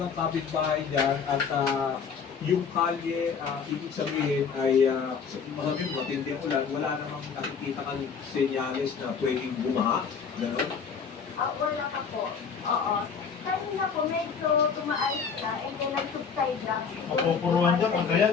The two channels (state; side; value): quieter; right; 6.2 dB